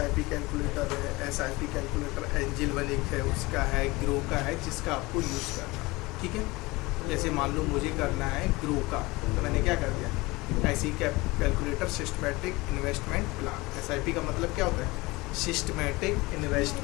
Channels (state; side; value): quieter; right; 22.3 dB